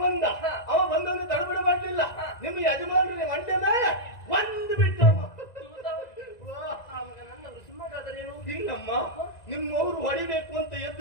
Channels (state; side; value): late; right; 1.9 ms